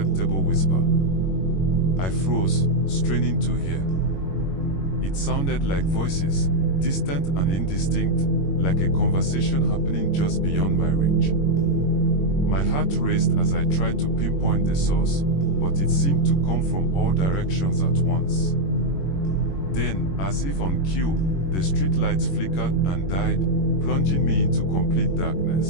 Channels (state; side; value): late; right; 21 ms